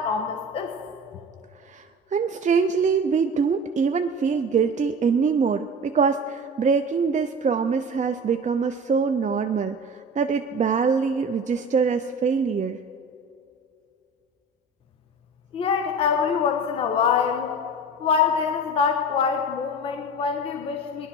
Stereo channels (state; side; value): normal; both; correlation 0.35